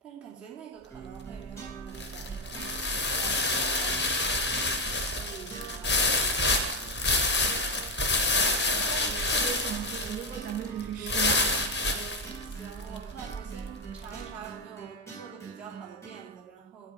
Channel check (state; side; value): normal; both; correlation 0.08